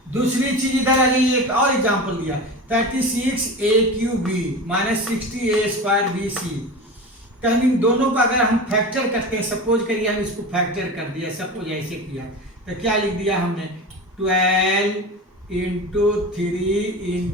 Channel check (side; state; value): both; normal; correlation 0.29